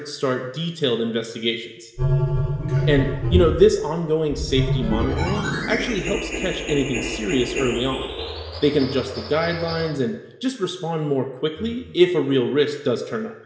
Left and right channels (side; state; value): both; identical; correlation 1.00